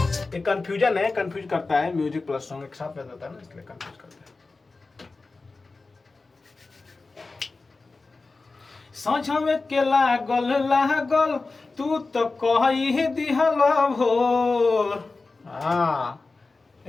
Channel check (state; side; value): quieter; right; 3.7 dB